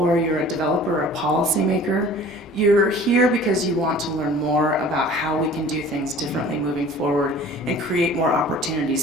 you're a developer or a policymaker, you're here because you want to learn more about how we can do things differently moving forward and create more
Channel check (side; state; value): both; normal; correlation 0.46